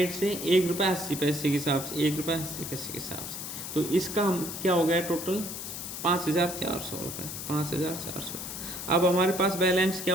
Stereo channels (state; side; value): noise; left; hiss, 7 dB below the sound